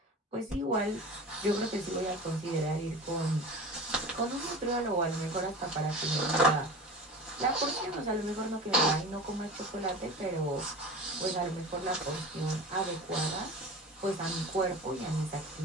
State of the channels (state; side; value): normal; both; correlation 0.34